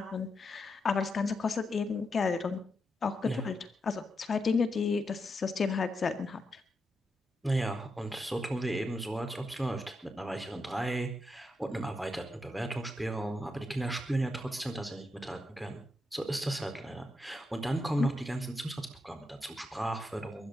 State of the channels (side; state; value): both; normal; correlation 0.84